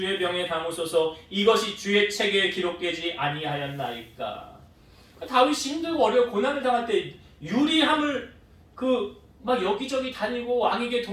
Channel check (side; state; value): both; identical; correlation 1.00